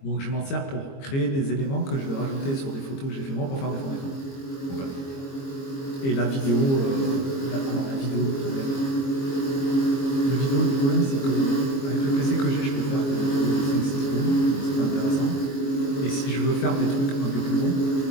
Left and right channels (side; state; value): right; late; 22 ms